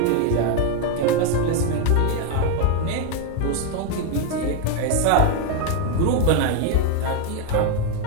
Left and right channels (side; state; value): both; different; correlation 0.01